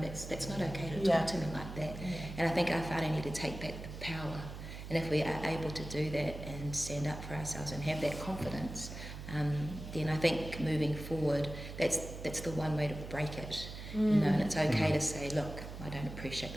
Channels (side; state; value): right; noise; hum, 10 dB below the sound